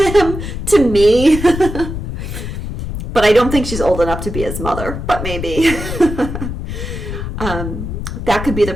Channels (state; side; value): noise; left; rumble, 6 dB below the sound